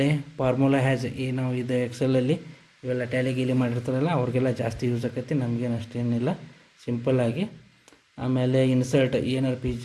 ಫಾರ್ಮುಲಾ ನಾವು ಇದು ಎಕ್ಸೆಲಲ್ಲಿ ಇವೆಲ್ಲ ಟ್ಯಾಲಿ ಗೀಲಿ ಮಾಡಿರ್ತಾರಲ್ಲ ಅವ್ರಿಗೆಲ್ಲ ಜಾಸ್ತಿ ಯೂಸ್ ಆಕೈತಿ, ನಮಗೇನು ಅಷ್ಟೇನಿಲ್ಲ, ಸಿಂಪಲ್ಲಾಗಿ. ಆಮೇಲೆ ಇನ್ಸರ್ಟ್, ಏನಾರು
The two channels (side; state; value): both; identical; correlation 1.00